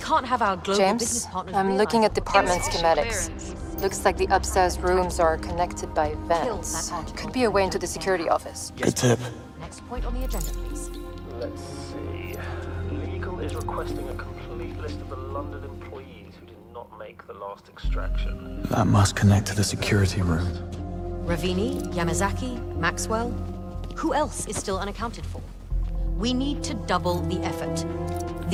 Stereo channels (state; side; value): identical; both; correlation 1.00